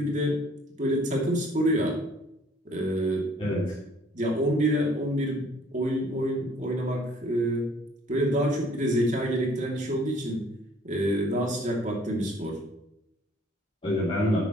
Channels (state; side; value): normal; both; correlation 0.57